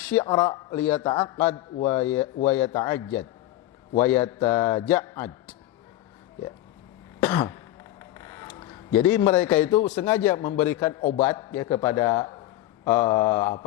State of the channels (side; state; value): right; quieter; 14.9 dB